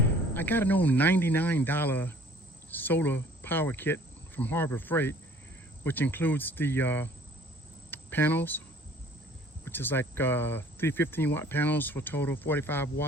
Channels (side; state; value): both; normal; correlation 0.53